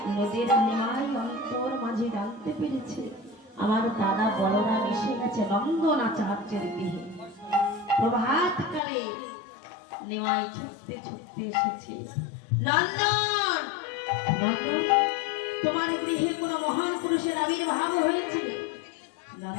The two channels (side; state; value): right; drops out; at 8.8 s